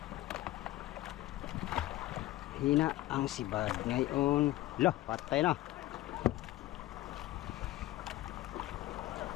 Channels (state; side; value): quieter; right; 16.2 dB